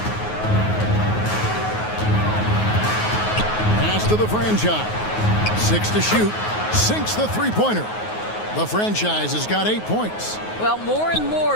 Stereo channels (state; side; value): late; right; 9.4 ms